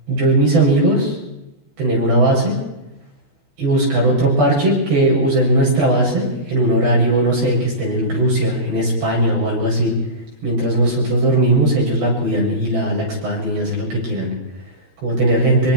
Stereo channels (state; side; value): late; left; 12 ms